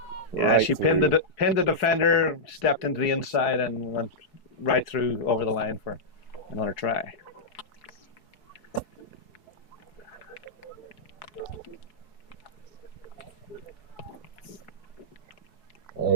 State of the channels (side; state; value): right; late; 4.7 ms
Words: Yeah, she pinned the defender, stepped into the inside, and went right through over the line for another try.